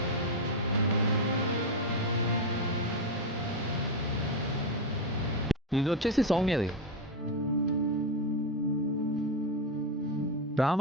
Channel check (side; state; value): both; normal; correlation 0.08